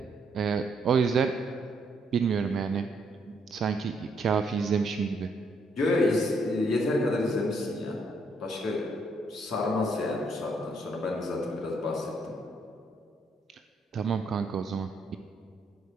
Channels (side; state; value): both; normal; correlation 0.72